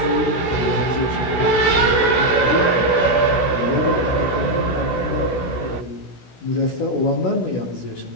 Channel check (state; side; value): late; right; 16 ms